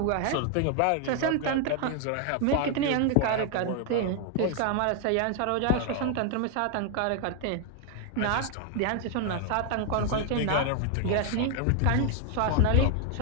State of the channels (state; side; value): different; both; correlation 0.00